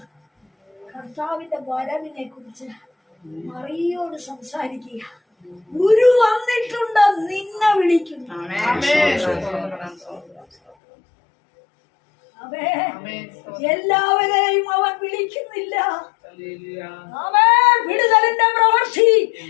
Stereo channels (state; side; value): drops out; right; at 10.8 s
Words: കർത്താവിന്റെ വരവിനെ കുറിച്ച് മറിയോട് സംസാരിക്കുക. ഗുരു വന്നിട്ടുണ്ട്, നിന്നെ വിളിക്കുന്നു. അവേ എല്ലാവരെയും അവൻ വിളിക്കുന്നില്ല. അവേ വിടുതലിന്റെ പ്രവൃത്തി